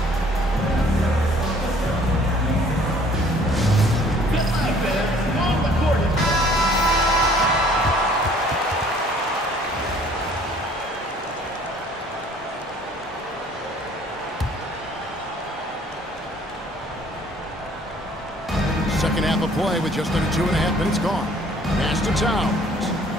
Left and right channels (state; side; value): normal; both; correlation 0.56